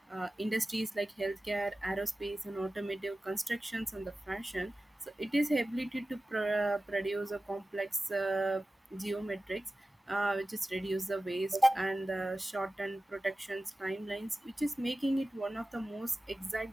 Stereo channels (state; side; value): normal; both; correlation 0.96